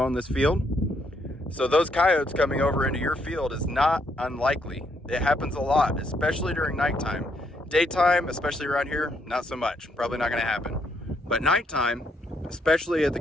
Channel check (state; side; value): normal; both; correlation 0.74